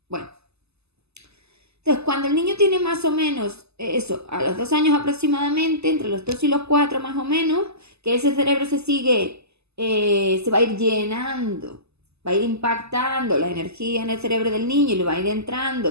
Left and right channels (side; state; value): left; late; 0.79 ms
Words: Bueno. Entonces, cuando el niño tiene más o menos eso, a los 2 años aproximadamente, entre los 2 y los 4 más o menos, que ese cerebro se va a ir llenando, va a ir impactando la energía en el cerebro del niño y le va a ir entrando